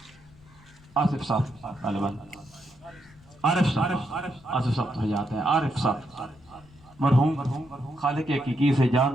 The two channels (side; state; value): left; noise; rumble, 26 dB below the sound